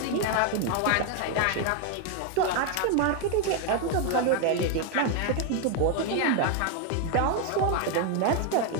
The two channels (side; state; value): both; different; correlation 0.01